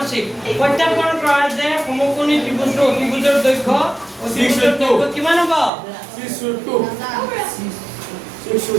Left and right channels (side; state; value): left; drops out; at 5.7 s